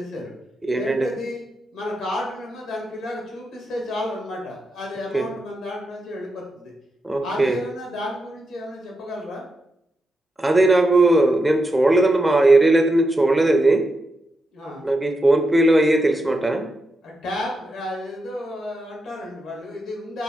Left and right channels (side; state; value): both; normal; correlation 0.86